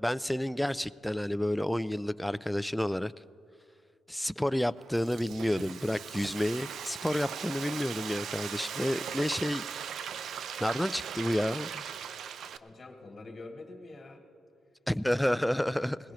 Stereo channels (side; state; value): both; normal; correlation 0.96